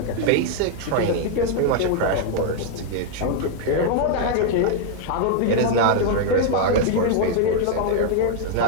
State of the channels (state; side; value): different; both; correlation -0.01